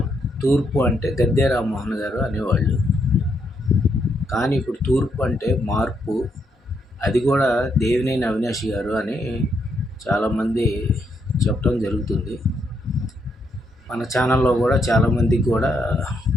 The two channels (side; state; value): both; normal; correlation 0.77